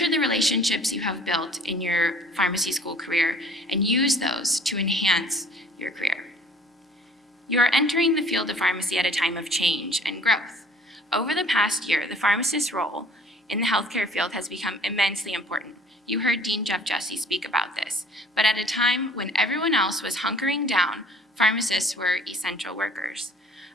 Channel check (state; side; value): normal; both; correlation 0.53